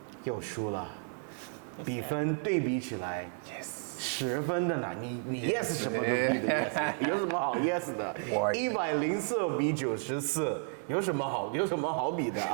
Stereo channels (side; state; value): left; silent; 56 dB below the other